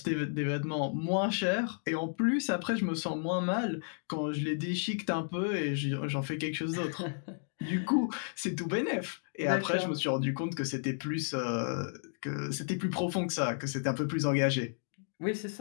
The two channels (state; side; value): silent; right; digital silence